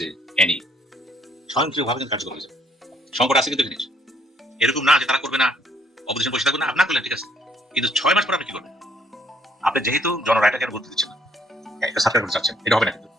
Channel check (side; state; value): both; normal; correlation 0.67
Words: এনি, স্বয়ংক্রিয়ভাবে কিন্তু কার্যকর হয়ে যাবে। সংকট আছে কিন্তু জিনিস এরকম না যে তারা করবে না, অপোজিশন বসে থাকবে না, আপনার করলেন ঠিক আছে, কিন্তু 6 মাস পর আপনি কি করবেন? আপনি যেহেতু জনরায়টাকে আর গুরুত্ব দিচ্ছেন না, একটা সাবস্ক্রাইব করতে চাচ্ছেন, এটা হবে না। কিন্তু